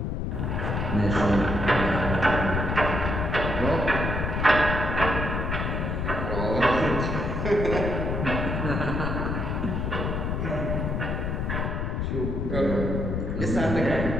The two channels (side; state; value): left; noise; rumble, 1 dB below the sound